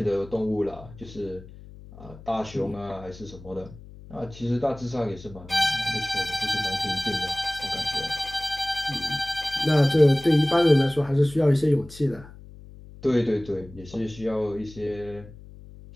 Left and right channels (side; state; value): left; noise; hum, 18 dB below the sound